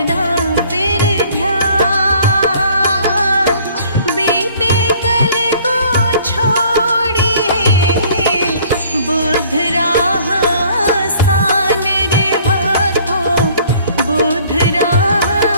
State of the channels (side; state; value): both; inverted; correlation -0.55